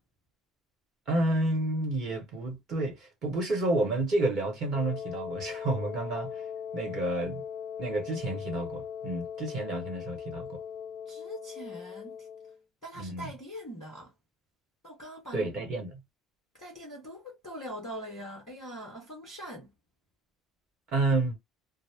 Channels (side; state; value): both; normal; correlation 0.54